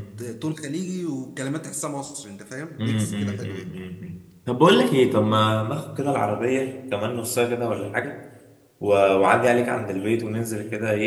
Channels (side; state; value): both; identical; correlation 1.00